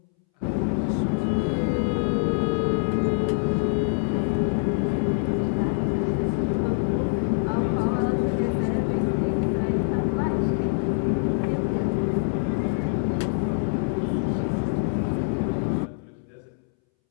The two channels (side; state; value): right; silent; 62 dB below the other